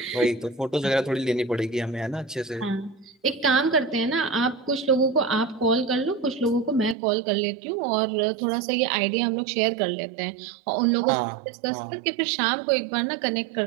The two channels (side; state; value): left; drops out; at 7.0 s